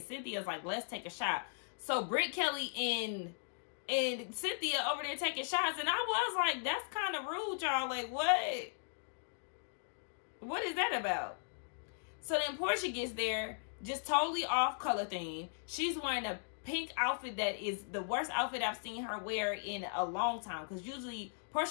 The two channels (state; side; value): silent; right; digital silence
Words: Cynthia's like, let's take a shot. So Britt, Kelly, and Cynthia over there taking shots, and I was like, that's kind of rude, y'all. Like, what? What is that about? So then Porsha gets there, just totally off color theme. She's wearing a pink outfit that is the worst outfit I've seen her wear in a long time, because usually